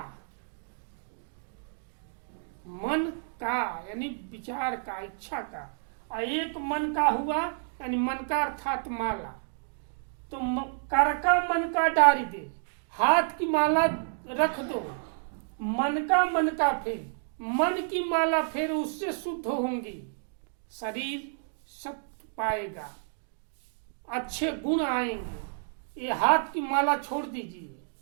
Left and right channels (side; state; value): left; silent; digital silence